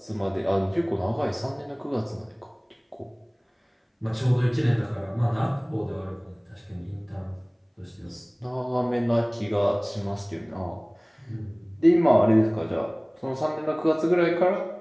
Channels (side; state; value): both; identical; correlation 1.00